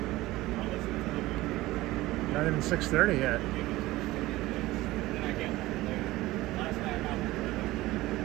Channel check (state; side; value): quieter; left; 18.1 dB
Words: not even 6:30 yet.